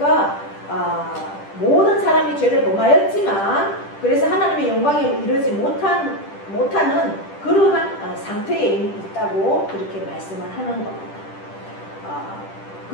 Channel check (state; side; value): late; right; 10 ms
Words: 모든 사람이 죄를 범하였지만 그래서 하나님의 영광에 이르지 못하는 그러한 상태에 있다고 그렇게 말씀을 하는 겁니다.